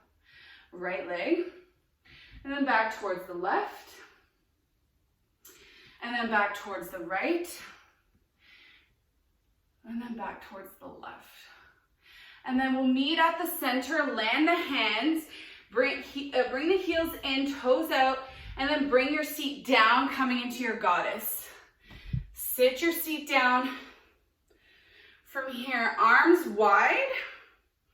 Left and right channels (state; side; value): identical; both; correlation 1.00